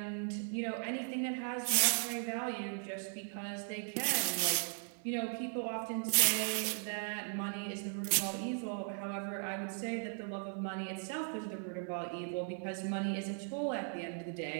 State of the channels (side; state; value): left; silent; 53 dB below the other